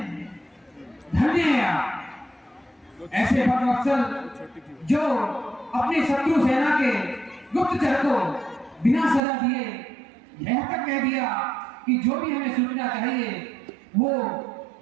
धन्य है आप, ऐसे भक्तवत्सल जो अपनी शत्रु सेना के गुप्तचर को बिना सजा दिए यह तक कह दिया कि जो भी हमें सूचना चाहिए वो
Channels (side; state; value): left; drops out; at 9.2 s